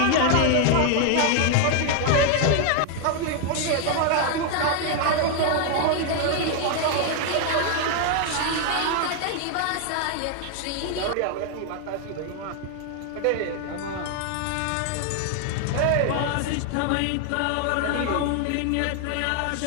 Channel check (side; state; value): both; different; correlation 0.00